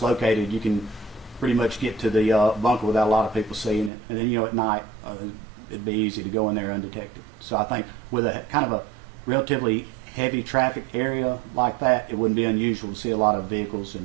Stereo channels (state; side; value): drops out; left; at 3.9 s